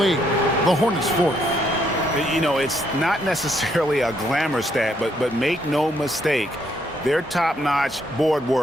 The Hornets fourth. You know, it's not necessarily a glamour stat, but make no mistake, their top-notch board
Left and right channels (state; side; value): normal; both; correlation 0.72